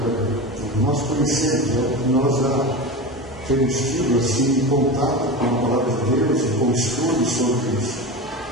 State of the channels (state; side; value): normal; both; correlation 0.25